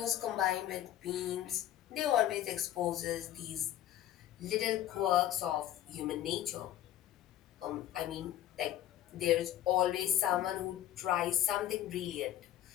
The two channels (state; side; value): quieter; right; 12.4 dB